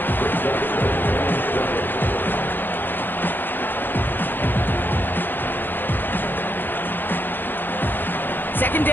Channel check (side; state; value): right; late; 0.094 ms